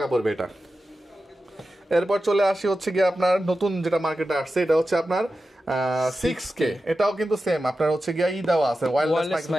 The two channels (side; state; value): both; normal; correlation 0.92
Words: পড়বে এটা। এরপর চলে আসি হচ্ছে গিয়ে আপনার নতুন যেটা মার্কেটে আসছে, এটা হচ্ছে আপনার 6K। এটাও কিন্তু সেম আপনার হচ্ছে গিয়ে দেওয়া আছে, ওয়্যারলেস